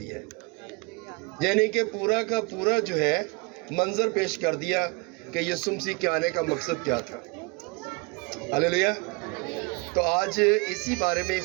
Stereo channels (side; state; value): left; quieter; 28.2 dB